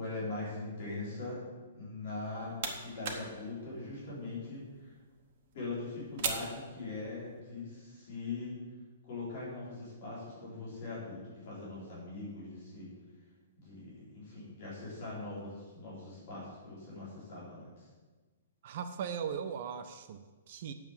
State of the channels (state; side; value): inverted; both; correlation -0.42